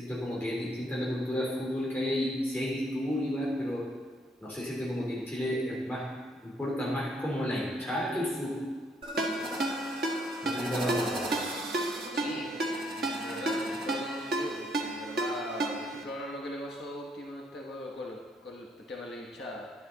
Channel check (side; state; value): both; normal; correlation 0.71